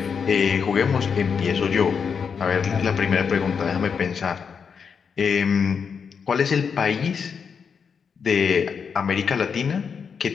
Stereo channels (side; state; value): right; quieter; 6.3 dB